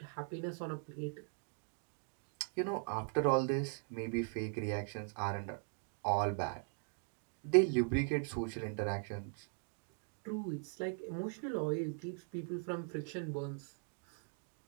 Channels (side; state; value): left; silent; 51 dB below the other